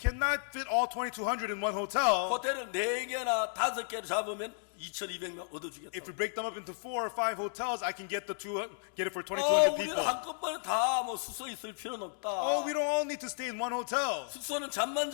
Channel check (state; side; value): silent; right; digital silence